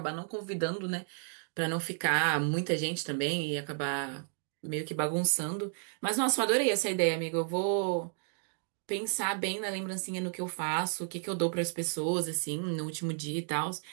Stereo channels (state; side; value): silent; left; digital silence